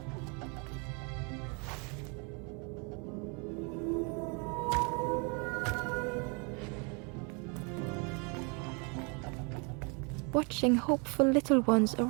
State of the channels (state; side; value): quieter; left; 33.6 dB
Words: Watching hopeful little ones